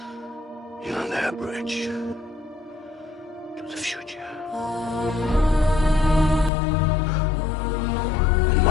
You're their bridge to the future. And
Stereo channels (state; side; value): drops out; right; at 6.5 s